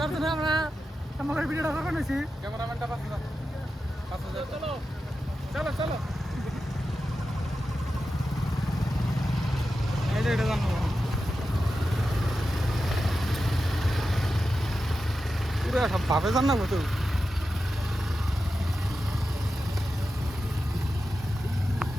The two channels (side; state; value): both; normal; correlation 0.91